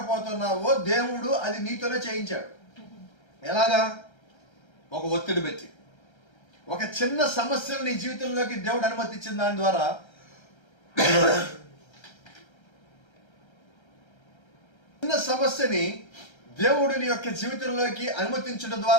దేవుడు అది నీతోనే చేయించాడు. ఎలాగా? ఒక ఒత్తిడి పెట్టి, ఒక చిన్న సమస్యను నీ జీవితంలోకి దేవుడు అనుమతించిన దాని ద్వారా చిన్న సమస్యని దేవుడు నీ యొక్క జీవితంలోకి అనుమతించడం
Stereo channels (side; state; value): right; late; 1.3 ms